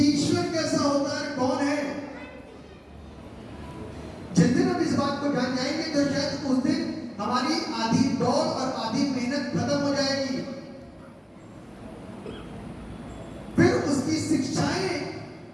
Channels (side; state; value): both; identical; correlation 1.00